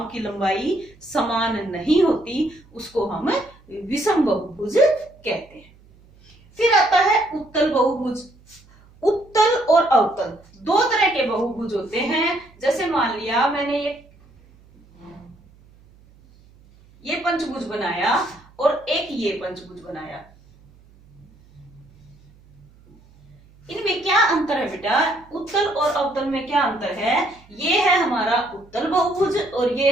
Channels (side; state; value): right; noise; hum, 27 dB below the sound